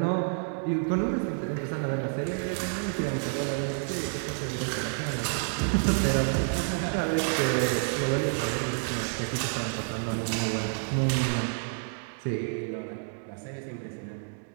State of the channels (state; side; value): silent; left; 58 dB below the other